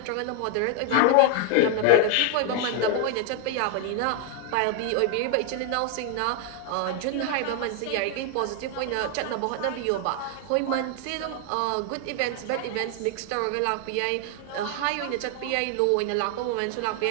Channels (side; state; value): both; different; correlation 0.01